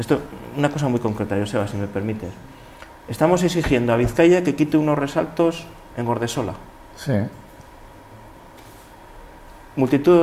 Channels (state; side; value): identical; both; correlation 1.00